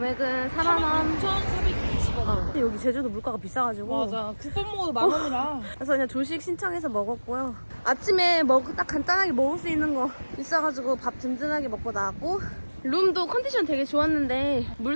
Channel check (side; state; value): both; inverted; correlation -1.00